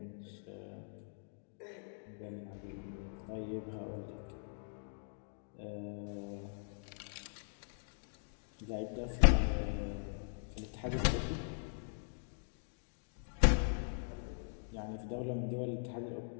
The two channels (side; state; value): right; silent; digital silence